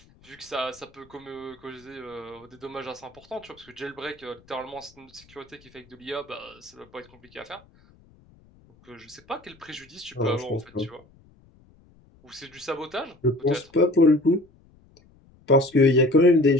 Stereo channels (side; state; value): left; noise; rumble, 28 dB below the sound